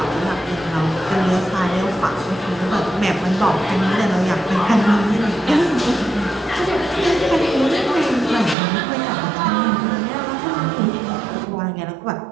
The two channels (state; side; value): drops out; left; at 8.6 s